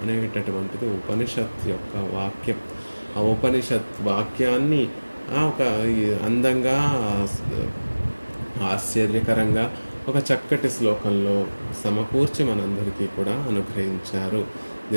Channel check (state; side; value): inverted; both; correlation -1.00